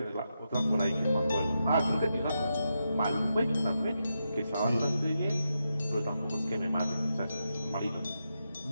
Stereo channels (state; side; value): inverted; both; correlation -0.86